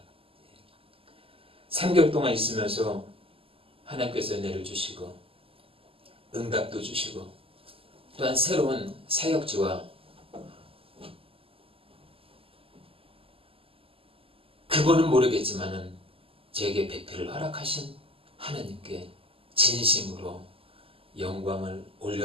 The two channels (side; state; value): left; late; 0.27 ms